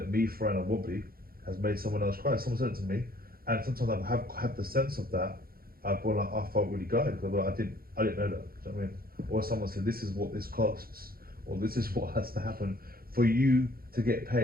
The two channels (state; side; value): late; left; 0.43 ms